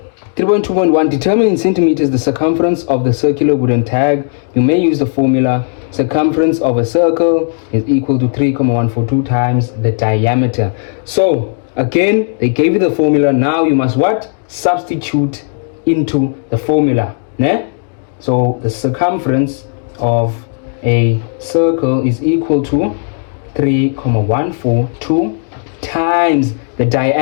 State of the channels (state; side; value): silent; right; 59 dB below the other